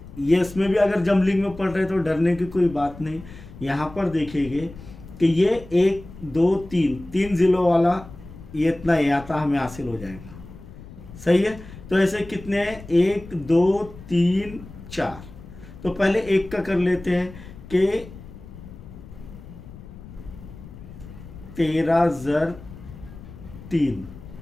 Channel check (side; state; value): left; noise; rumble, 16 dB below the sound